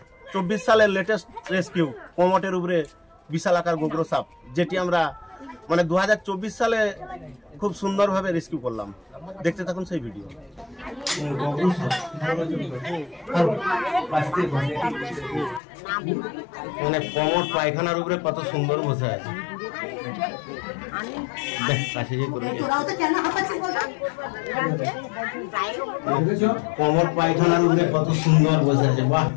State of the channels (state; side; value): drops out; right; at 15.6 s